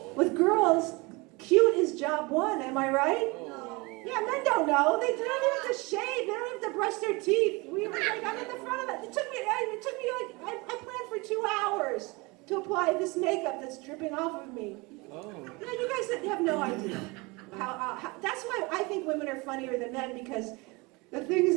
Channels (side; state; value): left; quieter; 25.8 dB